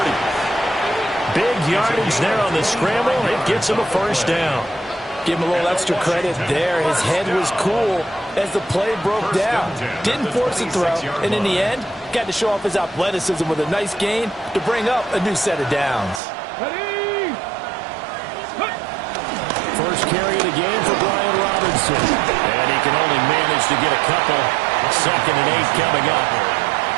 Big yardage there on the scramble. It gets him a first down. Give him a little extra credit there. His head was cool as the play broke down. Didn't force a throw, and in the end, got to show off his athleticism with a nice gain to bring up a new set of downs. First carry of the game for Brian Robinson. And he can only manage to get a couple. 2nd and 8 coming up.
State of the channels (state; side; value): drops out; left; at 16.2 s